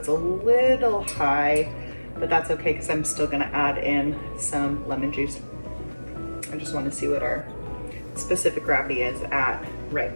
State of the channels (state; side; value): inverted; both; correlation -1.00